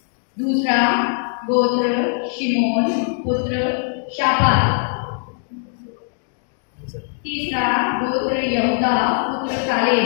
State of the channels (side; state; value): right; silent; 65 dB below the other